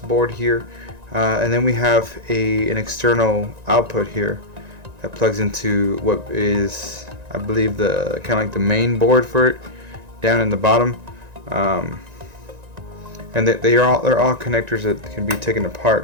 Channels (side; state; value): left; late; 1.9 ms